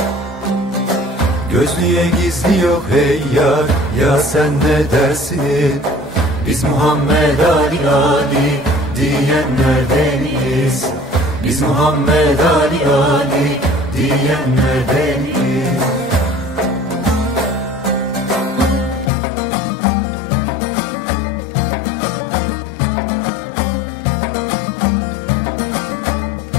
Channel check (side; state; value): right; drops out; at 19.1 s